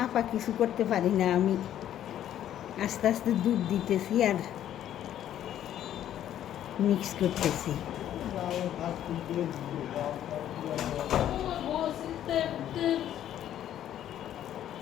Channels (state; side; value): quieter; right; 11.3 dB